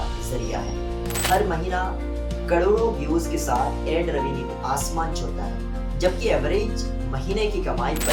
जरिया है। हर महीना करोड़ों व्यूज के साथ एड रेवेन्यू आसमान छूता है, जबकि एवरेज महीने की कमाई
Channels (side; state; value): both; identical; correlation 1.00